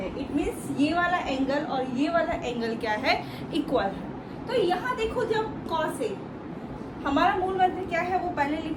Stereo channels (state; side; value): identical; both; correlation 1.00